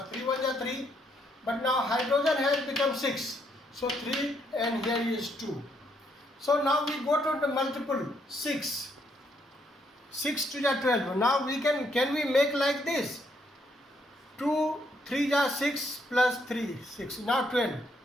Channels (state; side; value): normal; both; correlation 0.73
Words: 3 1s are 3, but now hydrogen has become 6, so 3 and here is 2. So now we go to the multiple 6 to the 12. Now we can we make like this? 2 3 are 6 plus 3 6, now 12.